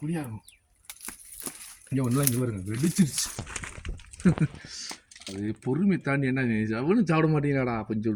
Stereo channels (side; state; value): both; identical; correlation 1.00